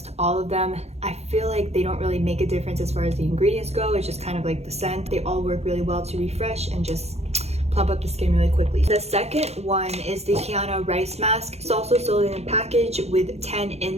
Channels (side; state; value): left; late; 0.31 ms